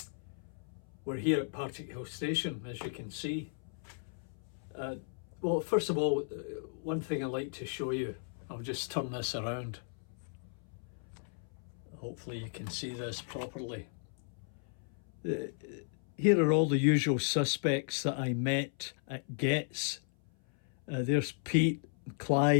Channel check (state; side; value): silent; right; 54 dB below the other